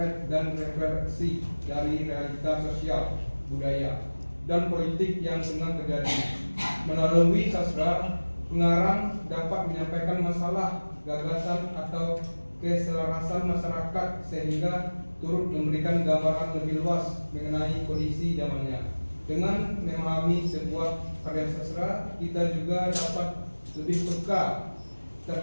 dan referensi dari realitas sosial, budaya, dan politik yang tengah terjadi. Melalui sastra, Pengarang dapat menyampaikan masalah, gagasan atau keselarasan masyarakat sehingga turut memberikan gambaran lebih luas mengenai kondisi zamannya. Dengan memahami sebuah karya sastra, kita juga dapat lebih peka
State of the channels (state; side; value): inverted; both; correlation -1.00